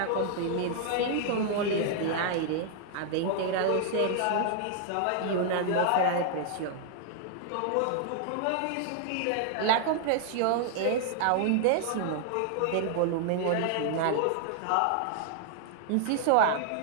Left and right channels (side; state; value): both; different; correlation -0.01